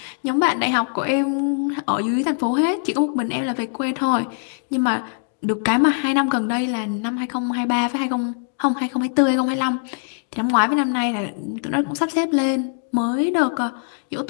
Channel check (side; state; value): right; silent; digital silence